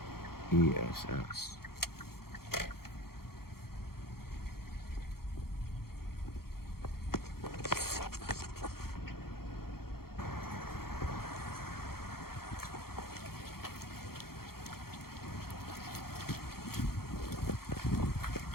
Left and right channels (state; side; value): late; right; 0.94 ms